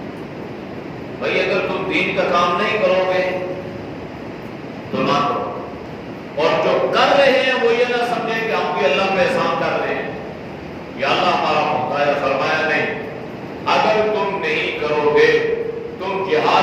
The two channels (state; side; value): identical; both; correlation 1.00